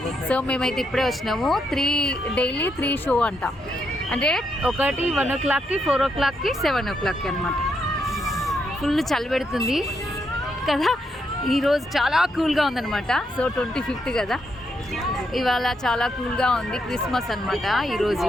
సో మేమైతే ఇప్పుడే వచ్చినాము. డైలీ 3 షో అంట, అంటే ఒకటి 1 o'clockకి, 4 o'clockకి, 7 o'clockకి అనమాట. ఫుల్ చలి పెడుతుంది కదా. ఈరోజు చాలా కూల్గా ఉందన్నమాట. సో 25th కదా, ఇవాళ చాలా కూల్గా ఉంది. క్రిస్మస్ అనమాట ఈరోజు,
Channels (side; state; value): both; normal; correlation 0.79